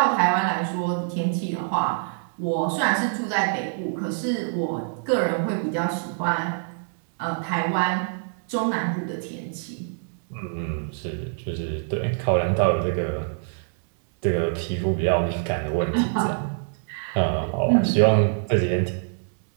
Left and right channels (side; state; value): left; silent; digital silence